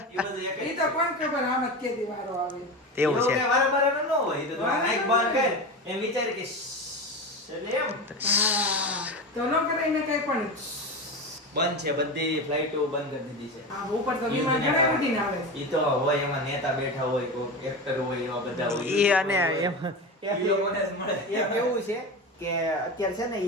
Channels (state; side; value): normal; both; correlation 0.23